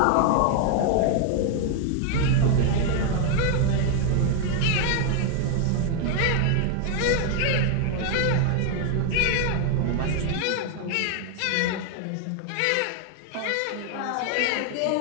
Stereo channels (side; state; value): both; different; correlation 0.00